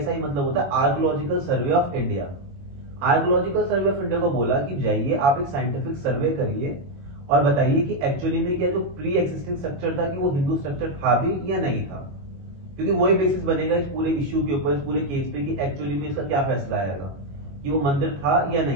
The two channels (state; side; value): late; left; 21 ms